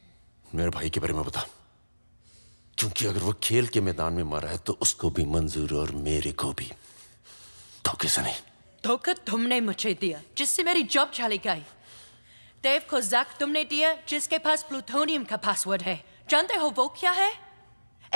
मेरे भाई के बारे में बता, क्योंकि अगर वो खेल के मैदान में मारा है तो उसको भी मंजूर और मेरे को भी। धोखे से नहीं। धोखा तुमने मुझे दिया, जिससे मेरी जॉब चली गई। देव को जैक तुमने दिया, जिसके पास प्लूटोनियम का पासवर्ड है। जानते हो वो क्या है?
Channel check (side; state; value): both; inverted; correlation -1.00